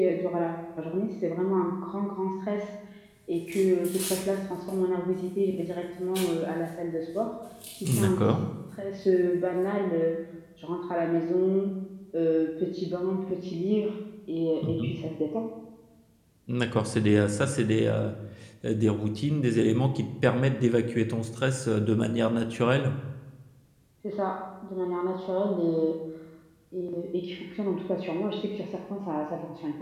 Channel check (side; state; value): both; identical; correlation 1.00